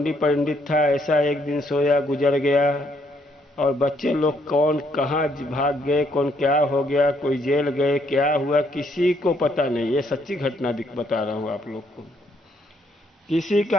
पंडित था ऐसा एक दिन सोया गुजर गया और बच्चे लोग कौन कहाँ भाग गए, कौन क्या हो गया, कोई जेल गए, क्या हुआ किसी को पता नहीं। ये सच्ची घटना बता रहा हूँ आप लोग को। किसी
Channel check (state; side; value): normal; both; correlation 0.71